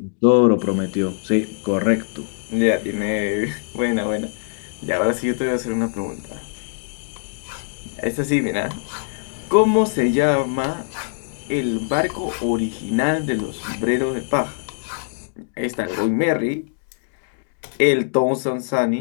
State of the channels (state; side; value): silent; right; digital silence